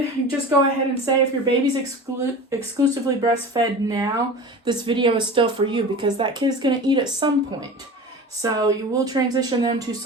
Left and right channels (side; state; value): both; normal; correlation 0.34